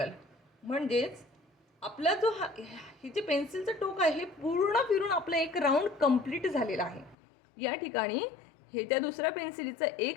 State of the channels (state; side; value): drops out; right; at 7.2 s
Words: म्हणजेच आपला जो हे जे पेन्सिलचं टोक आहे हे पूर्ण फिरून आपलं एक राऊंड कंप्लीट झालेला आहे. या ठिकाणी हे त्या दुसऱ्या पेन्सिलीचं